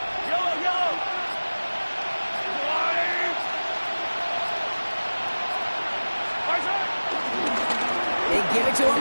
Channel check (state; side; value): inverted; both; correlation -1.00